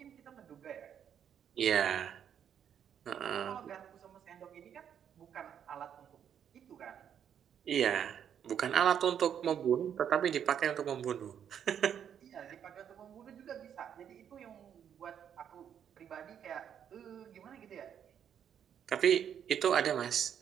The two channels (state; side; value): quieter; left; 8.8 dB